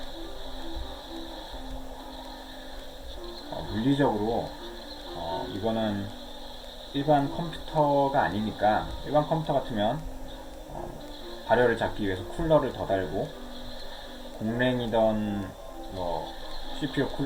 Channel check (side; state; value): both; identical; correlation 1.00